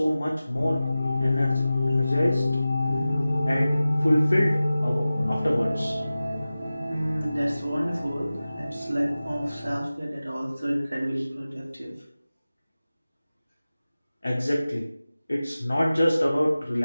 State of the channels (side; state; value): both; inverted; correlation -0.96